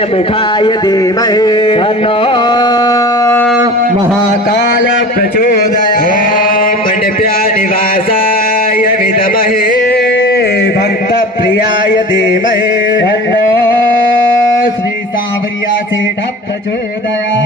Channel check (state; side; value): normal; both; correlation 0.37